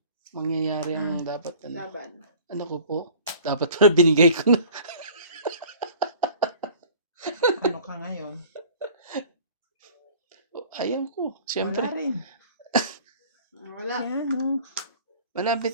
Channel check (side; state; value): both; inverted; correlation -0.47